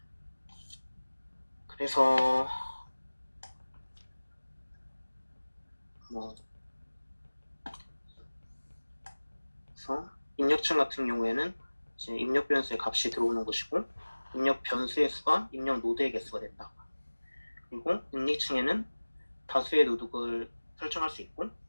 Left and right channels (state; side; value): inverted; both; correlation -1.00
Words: 그래서 그래서 입력층 같은 경우에는 이제 입력 변수의 값이 들어오는 것이고 입력 변수의 수가 입력 노드의 개수가 된다. 그리고 은닉층에는 다수의 노드를 설정할 수 있고